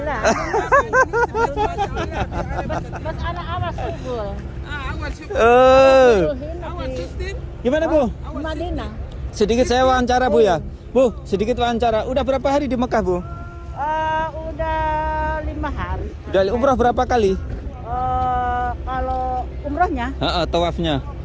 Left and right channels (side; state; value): both; identical; correlation 1.00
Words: Mas anak awas subul. Gimana Bu? Madinah. Sedikit saya wawancara Bu ya. Bu, sedikit wawancara. Udah berapa hari di Mekah Bu? Udah 5 hari. Udah umrah berapa kali? Kalau umrahnya? Tawafnya.